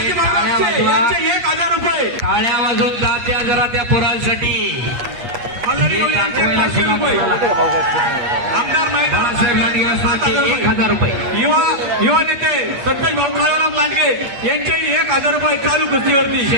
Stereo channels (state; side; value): late; left; 8.4 ms